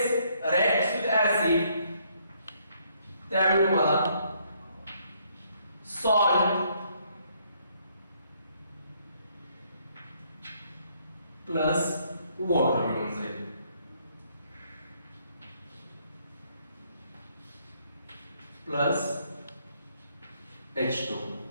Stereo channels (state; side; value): inverted; both; correlation -0.69